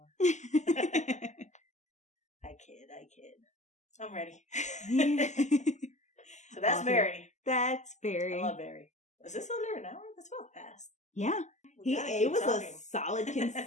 I kid. I'm ready. So that's awesome. Barry. That's Barry. I love Barry. Is this under an hour? That's well fast. Yeah. It was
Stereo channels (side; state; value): right; late; 0.34 ms